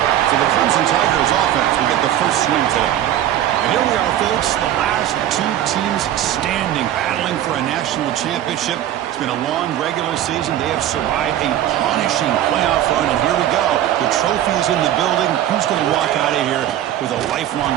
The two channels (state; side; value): quieter; left; 12.0 dB